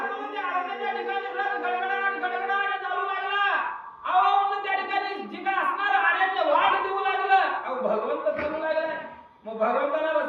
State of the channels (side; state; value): both; identical; correlation 1.00